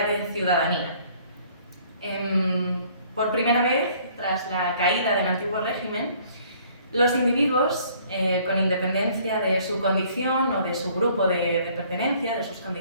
de ciudadanía. Por primera vez, tras la caída del antiguo régimen, los individuos, con independencia de su condición o de su grupo de pertenencia, de sus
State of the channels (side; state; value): both; inverted; correlation -0.58